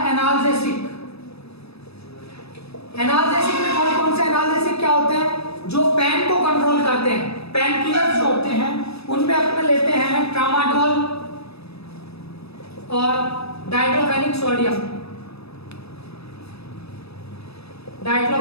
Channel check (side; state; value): right; late; 0.78 ms